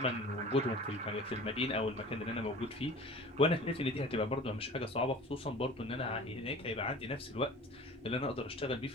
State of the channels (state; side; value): normal; both; correlation 0.41